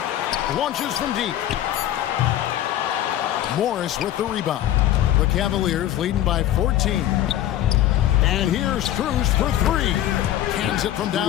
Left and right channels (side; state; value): right; quieter; 12.6 dB